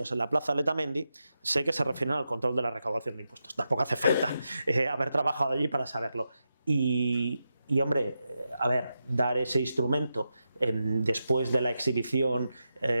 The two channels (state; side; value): inverted; both; correlation -0.88